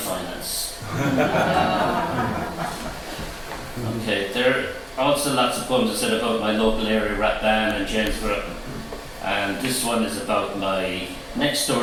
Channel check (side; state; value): both; identical; correlation 1.00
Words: Okay, there are also lots of poems I said about my local area rap band and Jamesborough, and this one is about my next